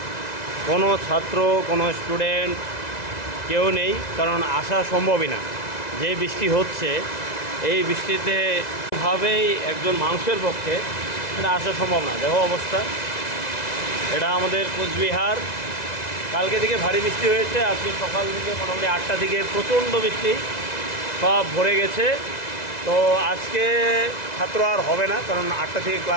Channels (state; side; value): late; right; 2.0 ms